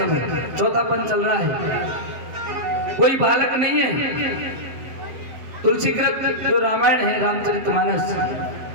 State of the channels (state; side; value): late; left; 7.7 ms